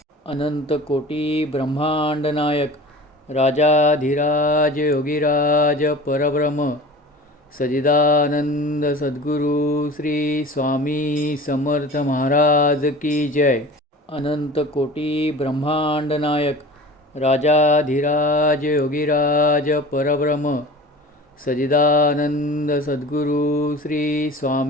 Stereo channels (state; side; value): normal; both; correlation 0.38